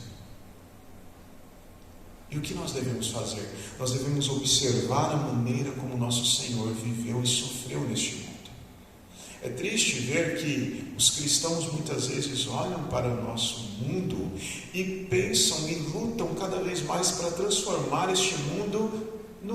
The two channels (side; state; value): both; identical; correlation 1.00